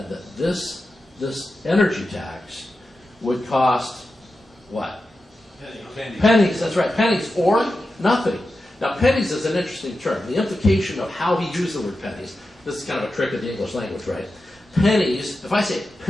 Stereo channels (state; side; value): normal; both; correlation 0.91